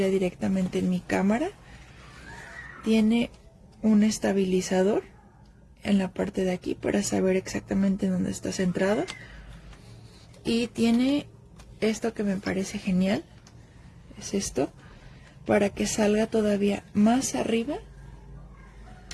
directamente en mi cámara. Tiene un estabilizador en la parte de aquí para saber exactamente dónde está centrado. Y tiene esto que me parece genial. Es esto. Para que salga todavía más arriba.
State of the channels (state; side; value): identical; both; correlation 1.00